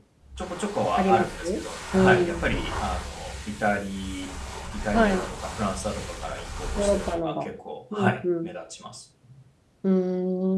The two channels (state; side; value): identical; both; correlation 1.00